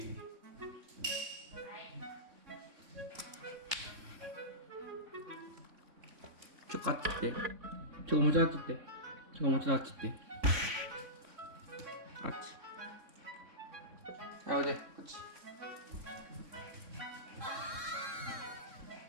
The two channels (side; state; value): left; late; 3.6 ms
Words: あっち行って。もうちょいあっち行って。もうちょいあっち行って。あっち。おいで、こっち。